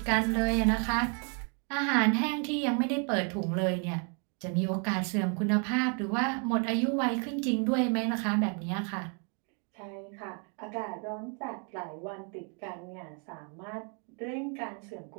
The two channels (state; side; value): quieter; left; 38.8 dB